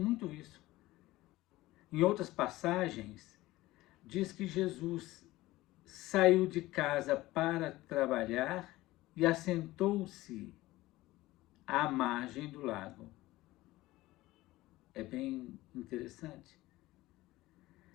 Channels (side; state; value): right; quieter; 17.9 dB